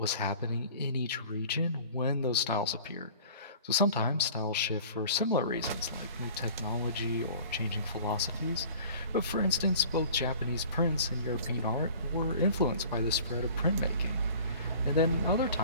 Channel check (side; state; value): both; inverted; correlation -0.45